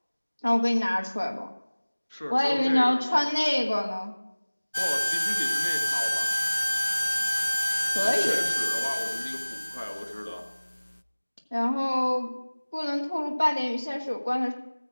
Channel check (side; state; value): both; inverted; correlation -1.00